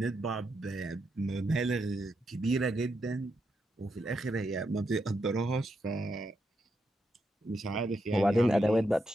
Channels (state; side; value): normal; both; correlation 0.83